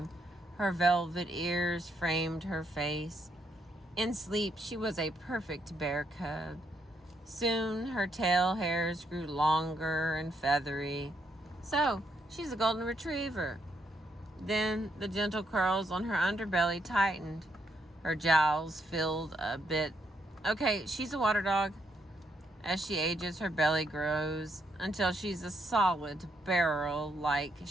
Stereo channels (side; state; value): both; normal; correlation 0.76